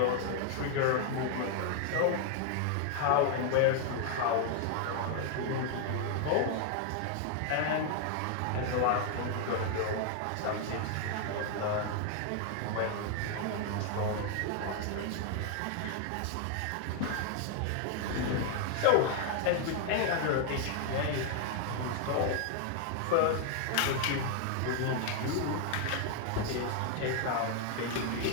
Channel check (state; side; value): different; both; correlation 0.00